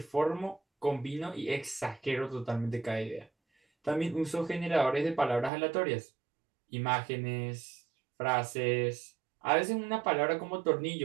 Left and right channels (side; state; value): left; drops out; at 5.5 s